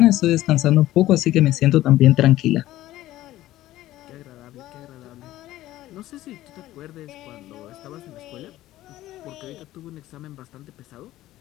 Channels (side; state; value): right; quieter; 15.2 dB